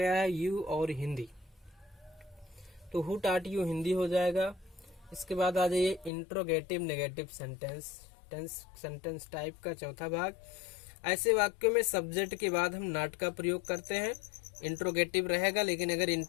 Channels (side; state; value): right; drops out; at 6.1 s